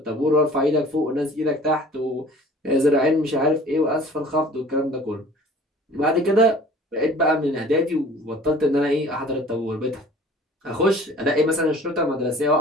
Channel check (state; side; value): normal; both; correlation 0.48